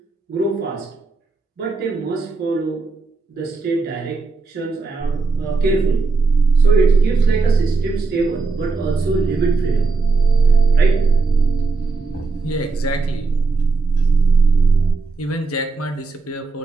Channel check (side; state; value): left; quieter; 4.0 dB